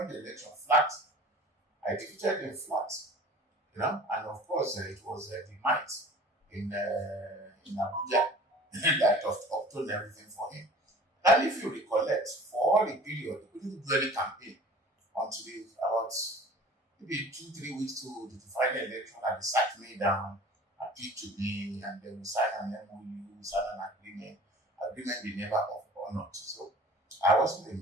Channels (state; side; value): normal; both; correlation 0.44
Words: the election flat. I defeated him flat. And of course, it was the might in Abuja that obtained everything for him. And if you recollect, for all the period, he couldn't do any campaign until about maybe 2-3 weeks to the final election, and they sat me down, appealed to me, and then we signed an MOU, signed an agreement they never honored. So I wasn't